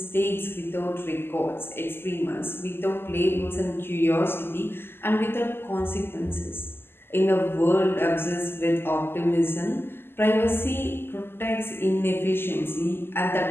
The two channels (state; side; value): late; right; 0.11 ms